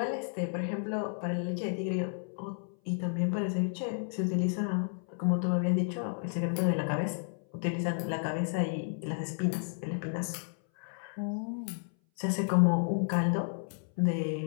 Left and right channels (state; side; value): silent; right; 56 dB below the other